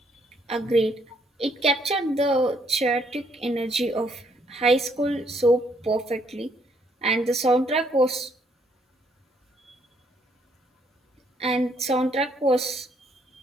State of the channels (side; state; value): both; normal; correlation 0.69